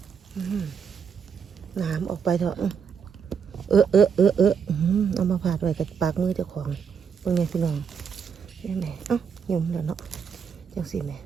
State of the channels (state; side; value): quieter; left; 6.7 dB